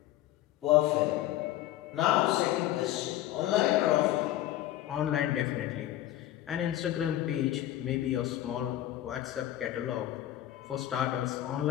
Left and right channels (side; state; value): right; quieter; 13.8 dB